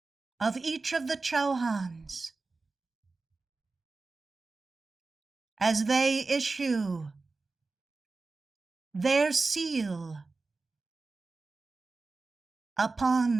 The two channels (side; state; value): left; quieter; 3.8 dB